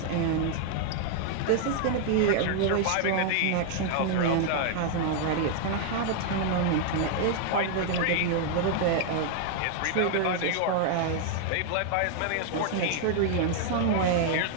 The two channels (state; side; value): different; both; correlation 0.00